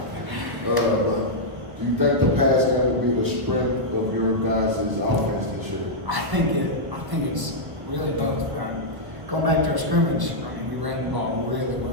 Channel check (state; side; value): late; left; 1.3 ms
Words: But do you think the pass game will be the strength of your guys' offense this year? I think it's really both. Going back to our scrimmage, we ran the ball really